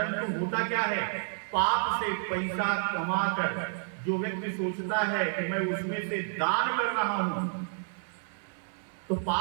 होता क्या है, पाप से पैसा कमाकर जो व्यक्ति सोचता है कि मैं उसमें से दान कर रहा हूं, तो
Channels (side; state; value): left; silent; digital silence